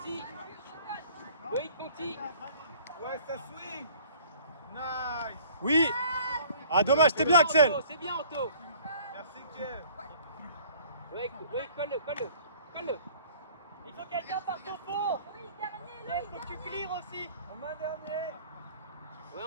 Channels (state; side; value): inverted; both; correlation -0.52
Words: Loïc Conti. Ouais, ça swing. Nice. Oui. Ah dommage, c'était bien Axel. C'est bien Anto. Merci, Kev. Loïc, colle-le. Il faut quelqu'un par son fond. Il faut que tu clears aussi. En main dernier. Ouais